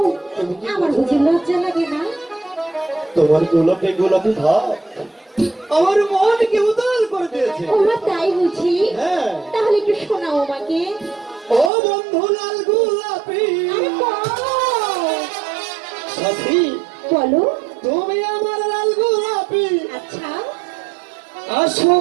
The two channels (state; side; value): drops out; left; at 11.7 s